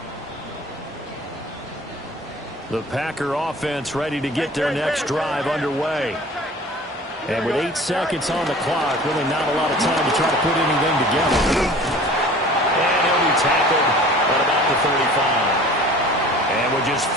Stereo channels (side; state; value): both; normal; correlation 0.44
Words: The Packer offense ready to get their next drive underway. And with 8 seconds on the clock, really not a lot of time to try to put anything together. And he'll be tackled at about the 35. And with just